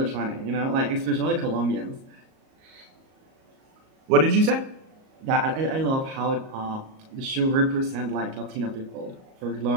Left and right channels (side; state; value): left; late; 38 ms